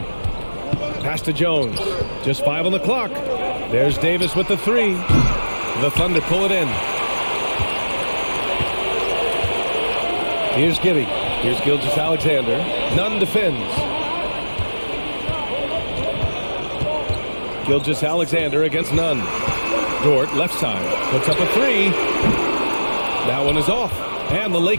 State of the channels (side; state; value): both; inverted; correlation -1.00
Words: Pass to Jones. Just 5 on the clock. There's Davis with the 3. The Thunder pull it in. Here's Giddy. Here's Gilgeous-Alexander. Nunn defends. Gilgeous-Alexander against Nunn. Dort, left side, puts up a 3. That one is off. And the